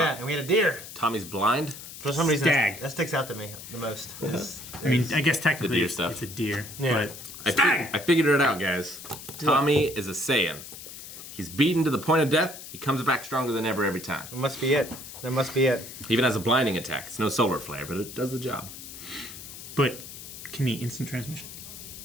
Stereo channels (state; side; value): noise; left; hiss, 13 dB below the sound